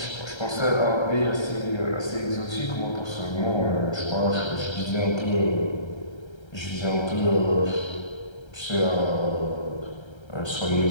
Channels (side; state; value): right; late; 1.3 ms